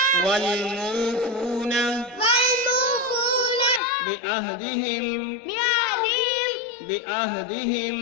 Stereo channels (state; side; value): drops out; right; at 3.8 s